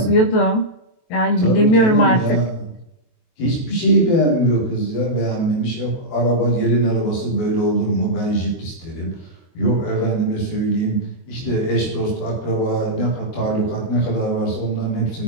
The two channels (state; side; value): late; right; 23 ms